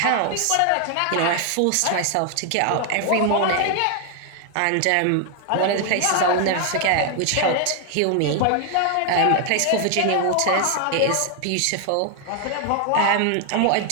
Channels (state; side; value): different; both; correlation 0.00